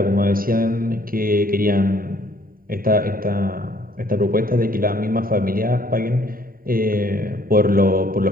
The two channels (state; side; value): late; left; 0.41 ms